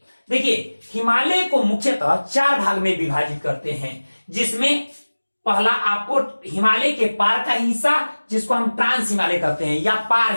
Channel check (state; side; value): inverted; both; correlation -1.00